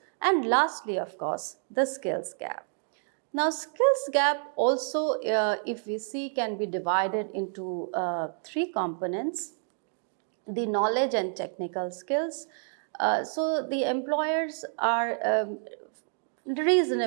And lastly, of course, the skills gap. Now, skills gap also, if we see, can be divided into three components: the knowledge and technical skills. So the employers are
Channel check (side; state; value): left; silent; 59 dB below the other